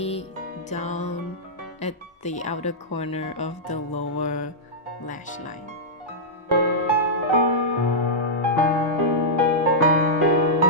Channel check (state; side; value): normal; both; correlation -0.11